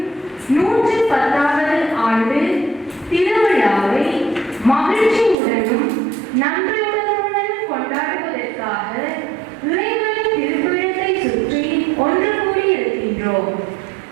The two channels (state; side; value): drops out; left; at 5.4 s